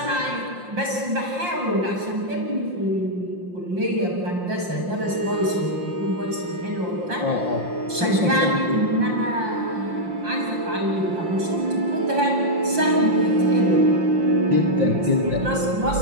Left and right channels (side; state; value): left; late; 5.7 ms